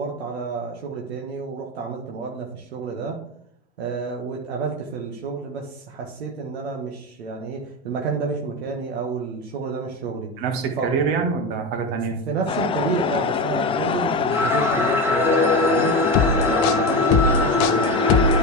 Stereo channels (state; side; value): normal; both; correlation 0.19